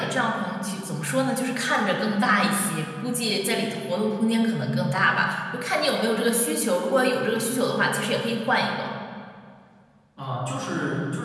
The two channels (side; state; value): both; identical; correlation 1.00